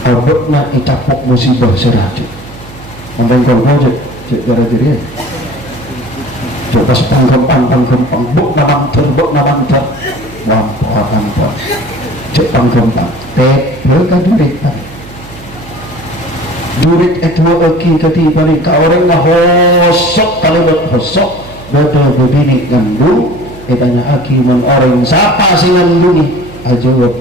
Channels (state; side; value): noise; right; hum, 18 dB below the sound